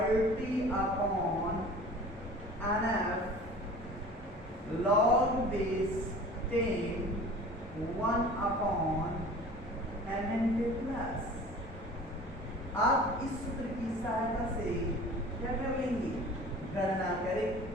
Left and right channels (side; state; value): both; normal; correlation 0.43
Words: upon NF log base 10 1 upon Mn के प्लस। आप इस सूत्र की सहायता से क्या कर लेंगे? गणना करें।